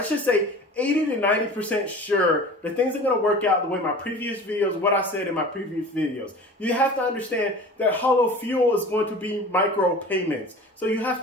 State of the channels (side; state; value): both; normal; correlation 0.39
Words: should say 80 to 90% sure that things are going to work out the way my previous videos, what I said in my previous videos. You have to understand that Holofuel is going to be micro payments. So you have